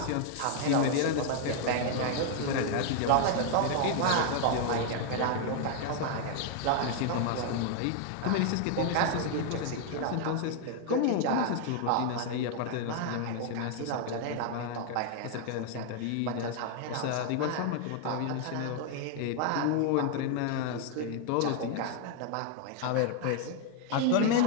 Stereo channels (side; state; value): both; different; correlation 0.00